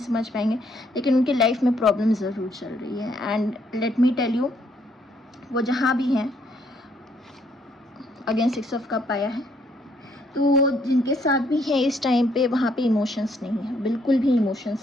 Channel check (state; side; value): normal; both; correlation 0.69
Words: समझ पाएंगे, लेकिन उनके लाइफ में प्रॉब्लम ज़रूर चल रही है। And let me tell you, वो जहाँ भी हैं, अगेन 6 ऑफ कप आया है, तो जिनके साथ भी है इस टाइम पे वहाँ पे इमोशंस नहीं है, बिल्कुल भी